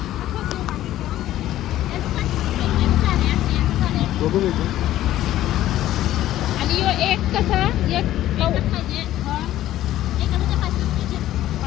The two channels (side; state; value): right; quieter; 13.7 dB